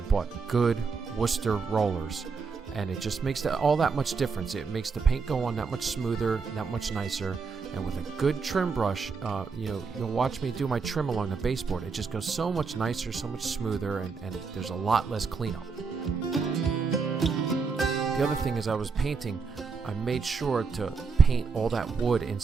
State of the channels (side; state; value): left; quieter; 5.1 dB